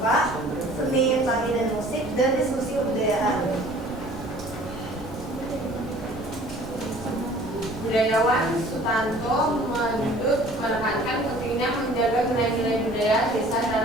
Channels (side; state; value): both; normal; correlation 0.50